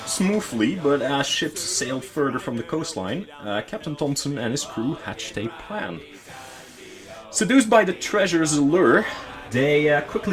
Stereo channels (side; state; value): both; identical; correlation 1.00